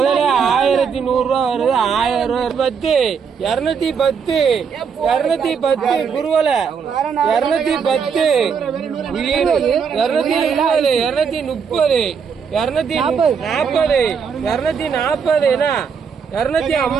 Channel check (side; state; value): left; quieter; 6.4 dB